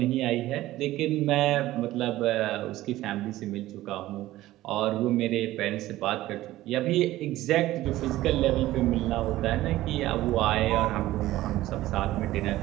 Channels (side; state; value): left; quieter; 15.9 dB